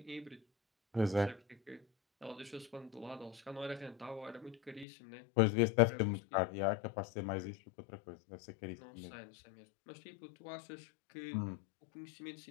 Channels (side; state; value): right; drops out; at 4.9 s